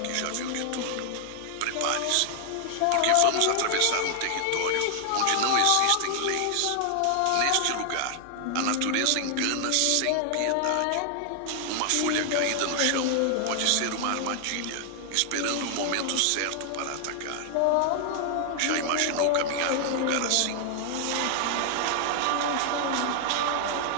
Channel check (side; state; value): both; different; correlation 0.00